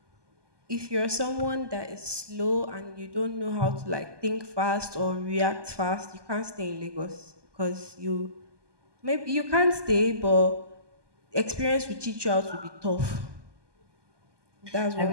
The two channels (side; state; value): left; late; 1.2 ms